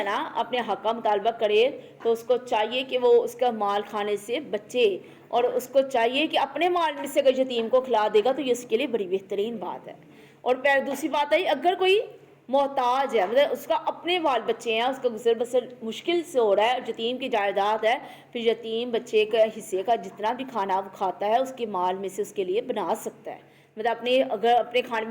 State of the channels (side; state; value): both; identical; correlation 1.00